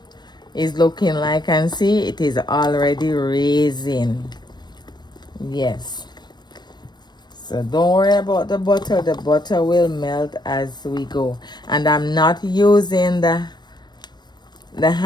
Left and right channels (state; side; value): late; right; 0.21 ms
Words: is looking like, and see it is already raising. Yes. So don't worry about the butter will melt as we go. And I'm not using the